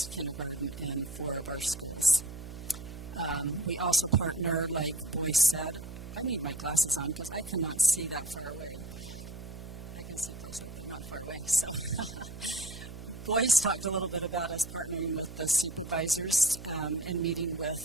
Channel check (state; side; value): noise; right; hum, 12 dB below the sound